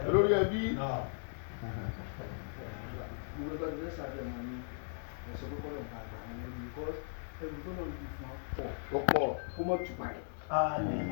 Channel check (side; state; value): right; silent; 53 dB below the other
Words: olórí ẹbí. gbogbo ẹgbẹ́ tó fẹ́ sáré ẹ̀ máa ní ẹ̀sọ́ kọ́kọ́ lọ́wọ́ bá gbà wọn lẹ́rú yìí ẹrù tó náà lè fún wa pọ̀. ó pọ̀. kó mọ̀ tù parẹ́.